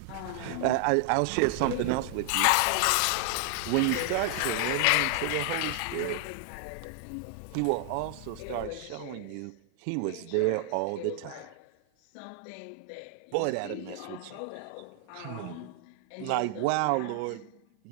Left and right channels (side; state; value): both; different; correlation 0.00